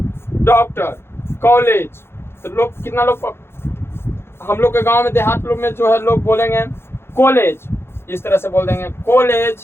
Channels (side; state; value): right; late; 0.12 ms